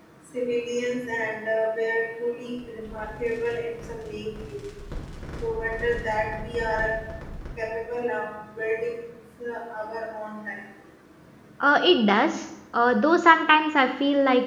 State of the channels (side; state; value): both; identical; correlation 1.00